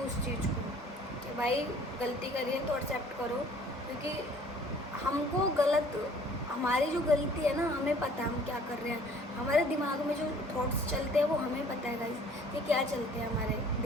उस चीज़ को कि भाई गलती करिए तो एक्सेप्ट करो, क्योंकि हमको गलत, हमारी जो गलती है ना, हमें पता है हम क्या कर रहे हैं। हमारे दिमाग में जो थॉट्स चलते हैं वो हमें पता है गाइस कि क्या चलते हैं हमारे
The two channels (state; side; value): normal; both; correlation 0.54